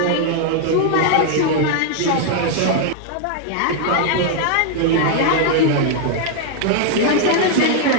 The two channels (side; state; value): both; different; correlation 0.00